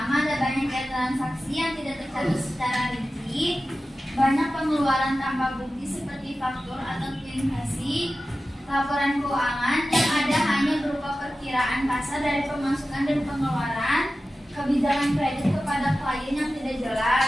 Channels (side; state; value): both; normal; correlation 0.94